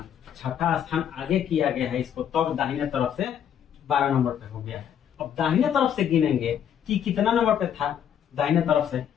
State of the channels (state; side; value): quieter; right; 9.1 dB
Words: 6ठा स्थान आगे किया गया है इसको, तब दाहिने तरफ से 12 नंबर पे हो गया है। अब दाहिने तरफ से गिनेंगे कि कितना नंबर पे था दाहिने तरफ से,